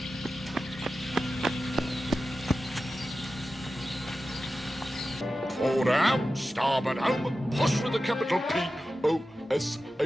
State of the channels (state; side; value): normal; both; correlation 0.93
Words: Forward out, starboard home, push with a capital